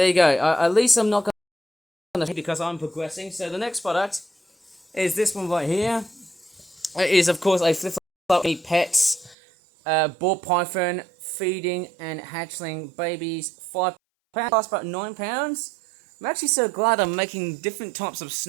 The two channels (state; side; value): drops out; left; at 9.3 s